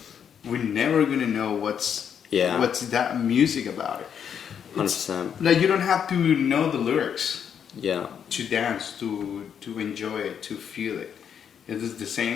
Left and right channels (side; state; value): right; quieter; 8.0 dB